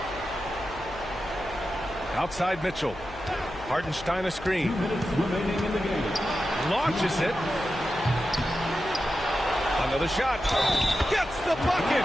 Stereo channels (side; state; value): left; noise; hum, 16 dB below the sound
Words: Outside Mitchell. Hartenstein a screen. Launches it. Another shot. Gets the